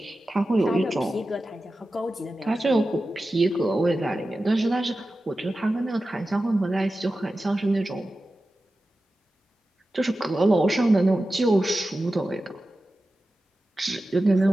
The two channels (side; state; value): both; normal; correlation 0.94